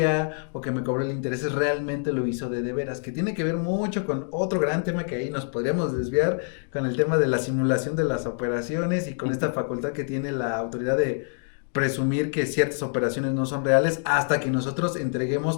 o que me cobró el interés, realmente lo hizo de veras, que tiene que ver mucho con otro gran tema que ahí nos podríamos desviar, con el tema de la simulación de las operaciones y con esta facultad que tiene la autoridad de presumir que ciertas operaciones no son reales hasta que nosotros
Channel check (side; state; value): right; silent; 61 dB below the other